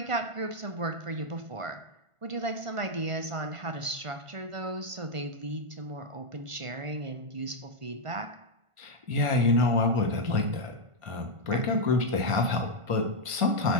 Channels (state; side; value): late; left; 1.5 ms